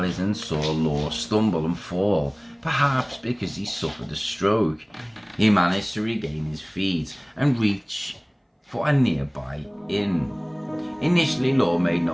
saw Law stumble and fall, Perhaps because he suffered a stroke, he managed to regain his feet and reach for a nearby inn. Initially, Law made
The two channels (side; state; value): both; identical; correlation 1.00